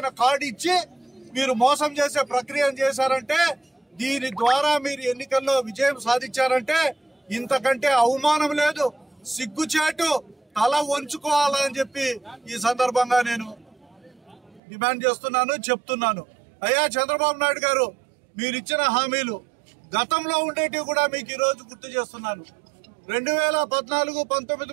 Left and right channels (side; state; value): left; drops out; at 14.6 s